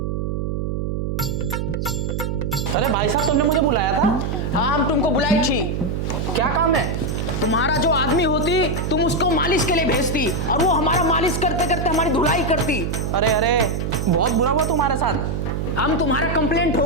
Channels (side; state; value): right; noise; hum, 2 dB below the sound